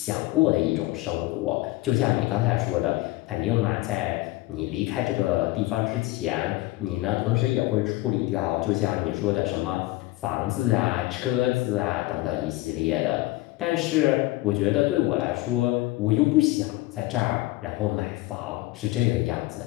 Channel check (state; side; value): quieter; right; 19.2 dB